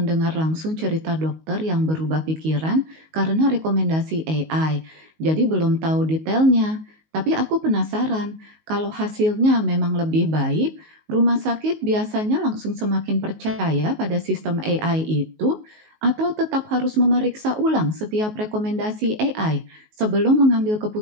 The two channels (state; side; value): late; left; 19 ms